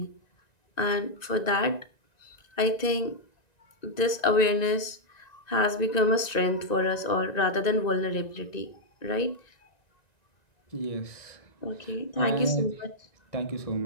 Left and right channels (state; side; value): late; right; 1.9 ms